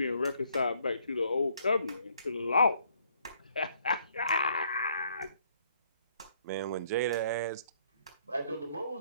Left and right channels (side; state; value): both; inverted; correlation -0.66